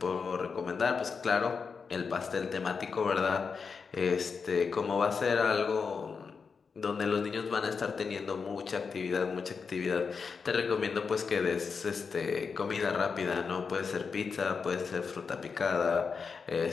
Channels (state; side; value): quieter; right; 5.4 dB